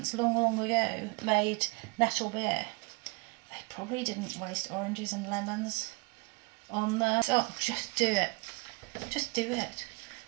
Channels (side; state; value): left; quieter; 29.0 dB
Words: long ago made Nettle Beer, they probably didn't waste oranges and lemons on there. So just do it. Just do it.